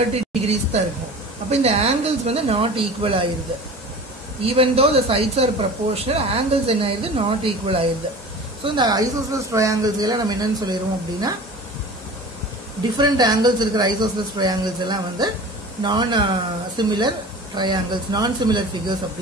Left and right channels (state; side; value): normal; both; correlation 0.38